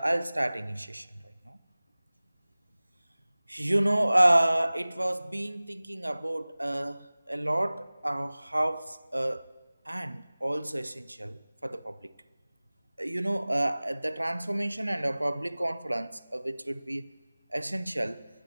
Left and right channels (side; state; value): both; inverted; correlation -0.99